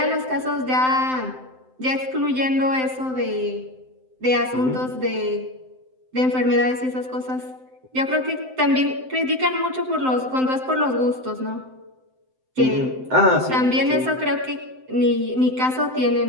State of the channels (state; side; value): late; left; 7.8 ms